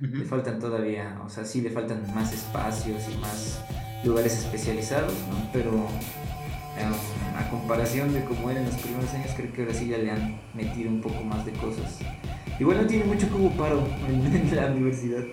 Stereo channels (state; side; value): identical; both; correlation 1.00